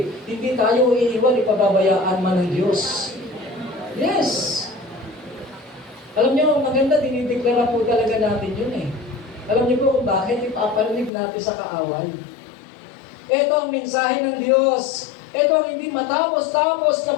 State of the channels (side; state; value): right; drops out; at 11.1 s